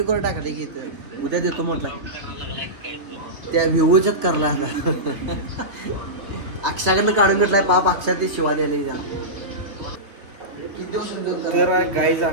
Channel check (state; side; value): late; left; 3.4 ms